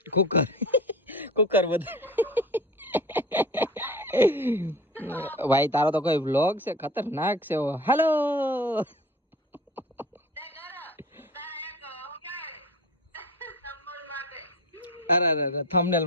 કુકર બધું ભાઈ તારો તો કોઈ વ્લોગ છે ખતરનાક છે. હેલો અરે થંબનેલ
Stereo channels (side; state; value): both; normal; correlation 0.36